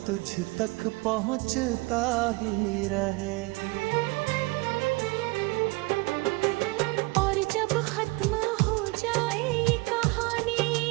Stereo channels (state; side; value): quieter; left; 24.8 dB